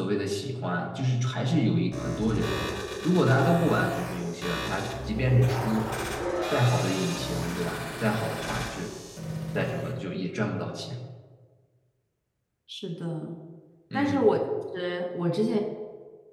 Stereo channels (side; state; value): both; identical; correlation 1.00